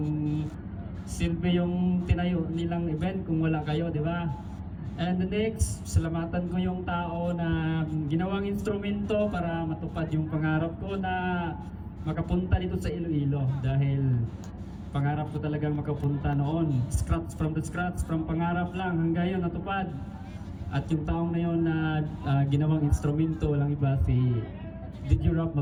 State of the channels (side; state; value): both; identical; correlation 1.00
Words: silbi yung tinayo nilang event kung wala kayo, di ba? And the next, salamatan ko yung tao na ginawang instrumento para matupad yung pangarap ko na makapunta dito sa Iloilo dahil pangarap ko talagang makapunta noon. From the scratch, from pangarap lang hanggang yun natupad. At yung taong na yun na ginawang instrumento lang iba si DJ Rap